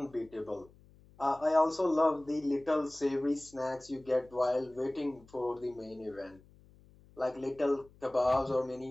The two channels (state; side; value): noise; left; hum, 26 dB below the sound